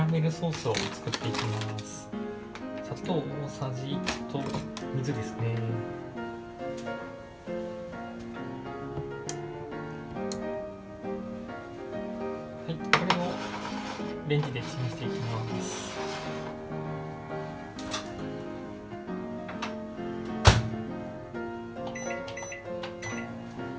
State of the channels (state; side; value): identical; both; correlation 1.00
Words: メルソースを作っていきます。砂糖大さじ1と水ですね。はい、これをレンジでチンしていきます。